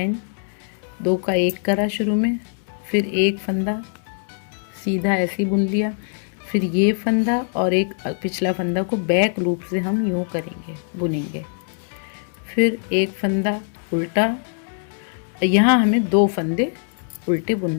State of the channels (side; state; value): right; silent; 64 dB below the other